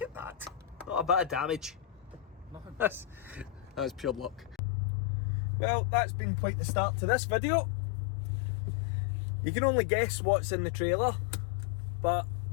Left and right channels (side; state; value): right; drops out; at 4.6 s